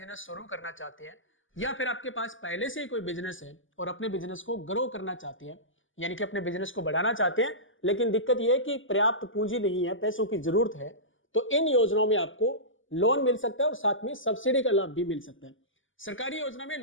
शुरू करना चाहते हैं, या फिर आपके पास पहले से ही कोई बिजनेस है और अपने बिजनेस को ग्रो करना चाहते हैं, यानी कि अपने बिजनेस को बढ़ाना चाहते हैं, लेकिन दिक्कत यह है कि पर्याप्त पूंजी नहीं है, पैसों की जरूरत है, तो इन योजनाओं में आपको लोन मिल सकता है और साथ में सब्सिडी का लाभ भी मिल सकता है। सरकारी योजना में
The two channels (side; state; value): right; late; 0.57 ms